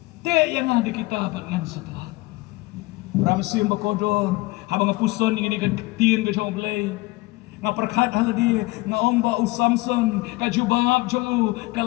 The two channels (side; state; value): right; quieter; 21.5 dB